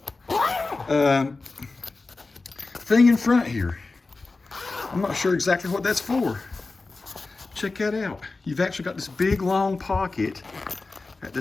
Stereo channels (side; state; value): right; quieter; 3.6 dB